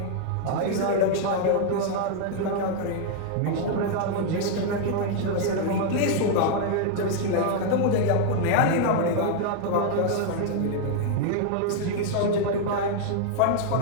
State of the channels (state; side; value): different; both; correlation 0.00